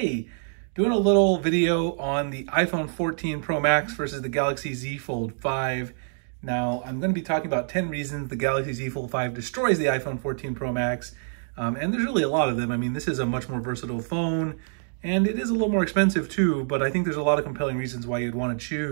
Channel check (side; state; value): left; silent; digital silence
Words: doing a little video on the iPhone 14 Pro Max versus the Galaxy Z Fold 5. Now, I'm going to be talking about 10 reasons the Galaxy Z Fold 5 destroys the iPhone 14 Pro Max. And there's really a lot of them. I mean, this is a much more versatile phone, and it is a little more expensive too, but I think there's a lot of compelling reasons why you'd want to